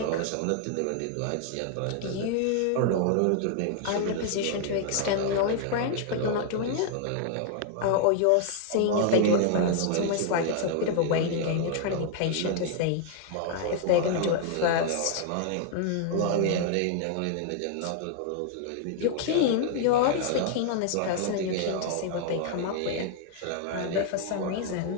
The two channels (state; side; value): different; both; correlation 0.00